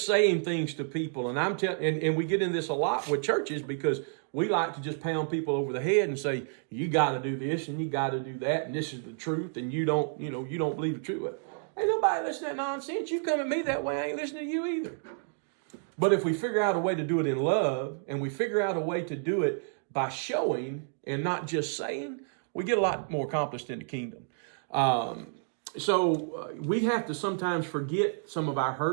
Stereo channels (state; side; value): silent; left; digital silence